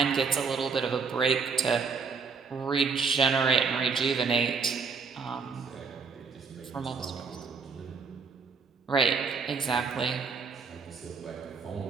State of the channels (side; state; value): left; quieter; 5.1 dB